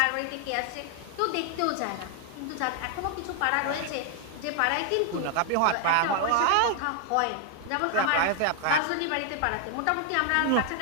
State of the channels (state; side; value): different; both; correlation 0.00